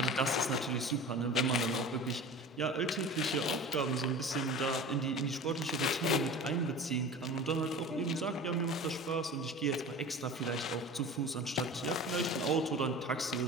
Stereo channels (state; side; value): normal; both; correlation 0.36